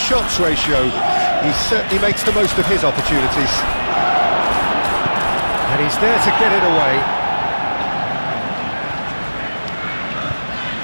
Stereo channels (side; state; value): both; inverted; correlation -1.00